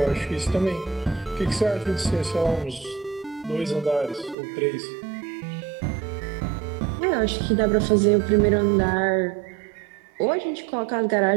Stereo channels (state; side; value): drops out; left; at 4.4 s